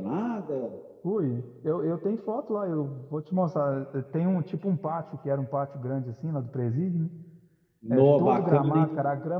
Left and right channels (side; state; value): both; identical; correlation 1.00